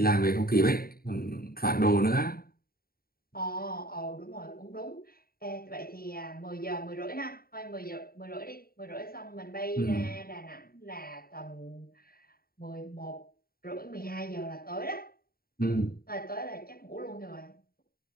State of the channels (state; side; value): late; right; 0.43 ms